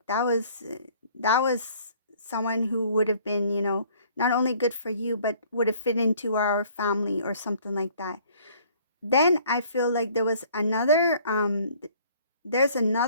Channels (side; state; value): both; inverted; correlation -0.57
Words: that was someone who would have been, not only good for you, but would have fit into our family or something like that. Then I feel like there's another